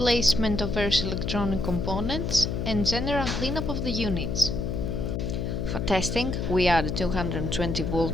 of various electronic components and general cleanup of the units. For testing, we add a 220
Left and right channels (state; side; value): noise; left; hum, 2 dB below the sound